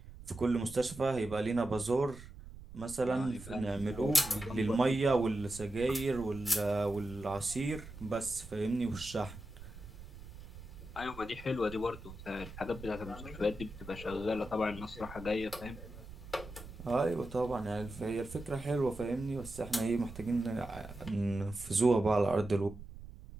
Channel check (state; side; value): noise; right; rumble, 15 dB below the sound